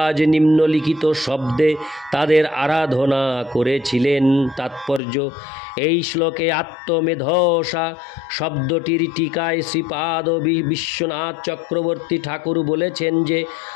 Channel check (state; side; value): drops out; right; at 5.0 s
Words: নিম্নলিখিত শব্দে তাদের আরাধনা করেছিলেন। তাৎপর্য: এই শ্লোকে আত্মমেধসা শব্দটির টিকায় শ্রীপাদ বিশ্বনাথ চক্রবর্তী ঠাকুর বলেছেন যে